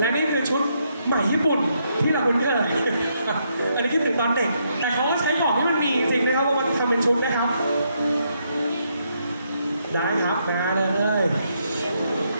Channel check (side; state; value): both; inverted; correlation -0.76